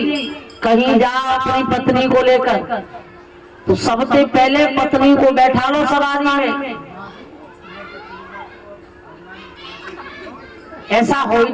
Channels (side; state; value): both; identical; correlation 1.00